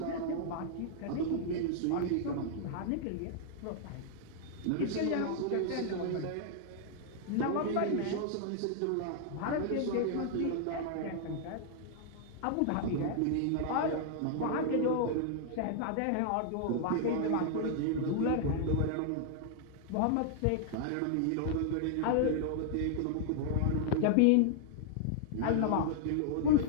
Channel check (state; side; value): different; both; correlation -0.01